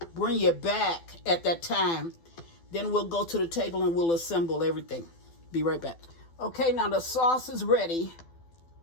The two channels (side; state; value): right; late; 12 ms